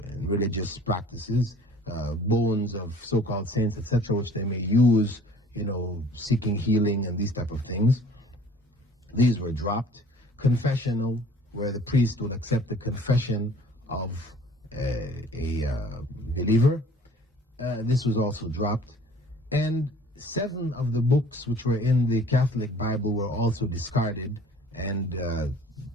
religious practices, bones of so-called saints, etc., which they may use, seeking healing and these type of things. These were dropped. Confessional, where the priest would accept the confession of a believer. This was also dropped. And 7 of the books which were in the Catholic Bible were also discarded and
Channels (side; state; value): both; normal; correlation 0.51